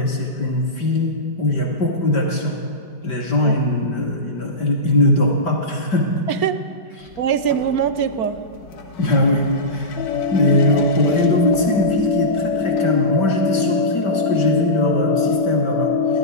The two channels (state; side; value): late; right; 5.1 ms